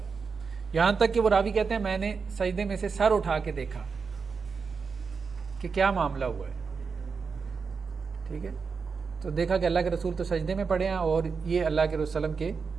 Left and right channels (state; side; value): quieter; left; 5.3 dB